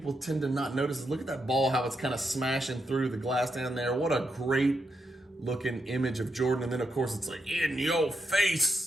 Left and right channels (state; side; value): normal; both; correlation 0.83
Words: tend to not notice is look at that ball, how it's kind of smashing through the glass down there. What a great looking image of Jordan. And then of course it's like in your